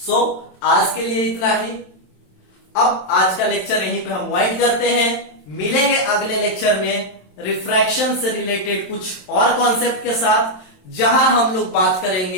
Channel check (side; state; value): right; late; 27 ms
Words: आज के लिए इतना ही। अब आज का लेक्चर यहीं पे हम वाइंड करते हैं, मिलेंगे अगले लेक्चर में रिफ्रैक्शन से रिलेटेड कुछ और कॉन्सेप्ट के साथ, जहां हम लोग बात